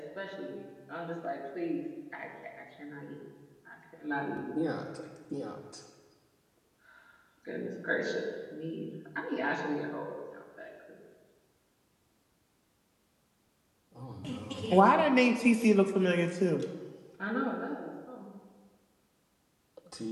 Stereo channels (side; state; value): both; identical; correlation 1.00